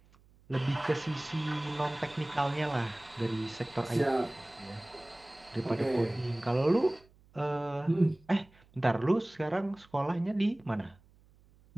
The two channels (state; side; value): noise; right; hum, 29 dB below the sound